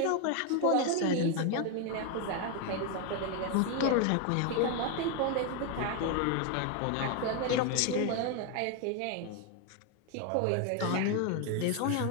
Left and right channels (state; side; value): different; both; correlation 0.01